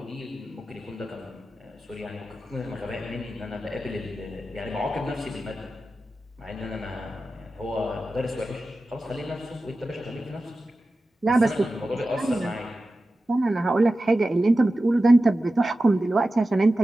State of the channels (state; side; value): normal; both; correlation 0.94